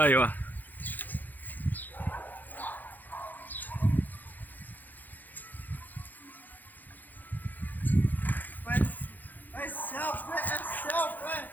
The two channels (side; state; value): right; late; 0.085 ms